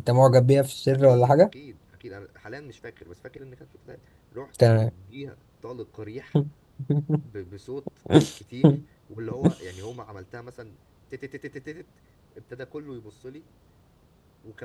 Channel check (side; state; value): both; identical; correlation 1.00